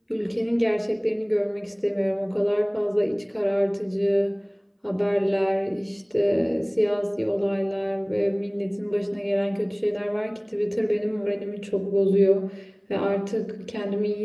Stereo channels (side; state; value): both; identical; correlation 1.00